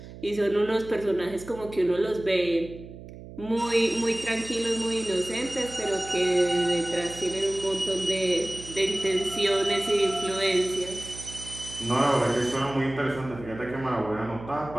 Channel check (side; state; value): right; noise; hum, 15 dB below the sound